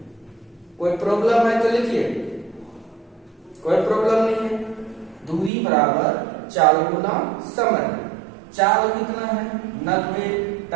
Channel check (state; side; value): drops out; left; at 5.5 s